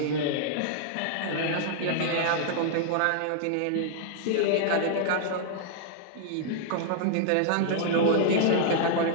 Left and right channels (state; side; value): different; both; correlation -0.01